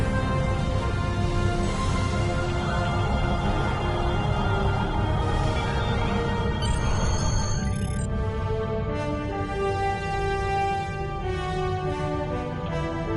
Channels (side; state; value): both; identical; correlation 1.00